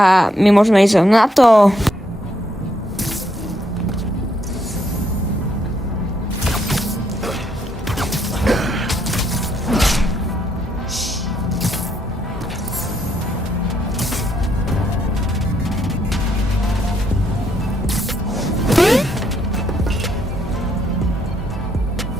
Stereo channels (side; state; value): both; normal; correlation 0.74